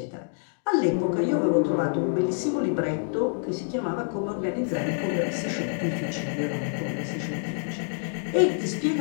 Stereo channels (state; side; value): silent; right; digital silence